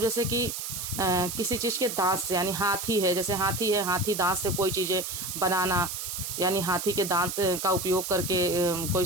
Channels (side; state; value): right; noise; hiss, 5 dB below the sound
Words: जैसे कि किसी चीज़ के दांत से, यानी हाथी है, जैसे हाथी है, हाथी दांत से कोई चीज़ें बनाना, यानी हाथी के दांत का उपयोग करके कोई